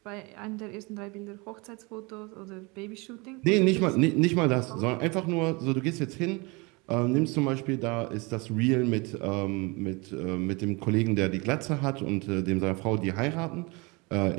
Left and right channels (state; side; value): quieter; left; 27.3 dB